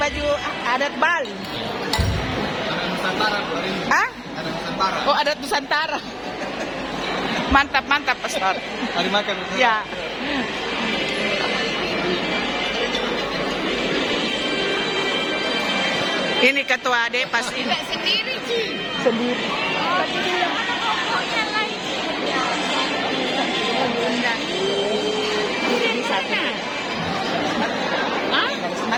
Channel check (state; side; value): identical; both; correlation 1.00